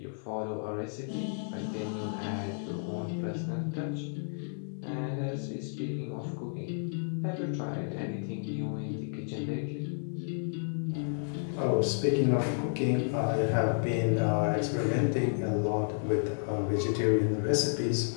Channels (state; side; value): silent; right; digital silence